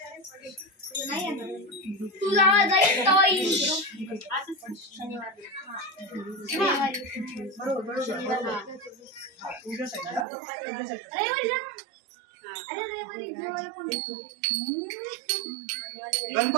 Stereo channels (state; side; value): drops out; left; at 10.2 s